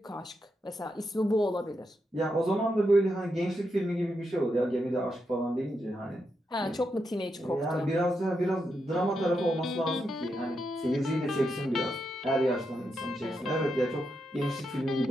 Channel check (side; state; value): both; normal; correlation 0.84